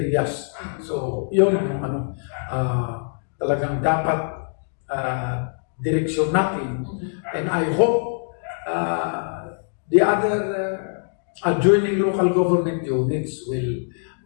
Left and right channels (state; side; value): silent; right; digital silence